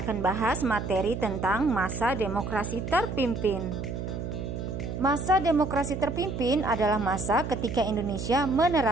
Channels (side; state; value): right; noise; hum, 5 dB below the sound